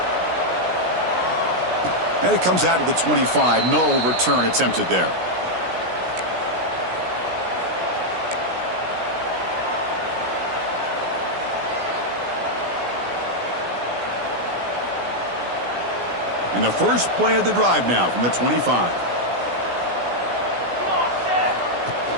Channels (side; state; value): left; late; 17 ms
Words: And it comes out to the 25. No return attempted there. And the first play of the drive now from the 25.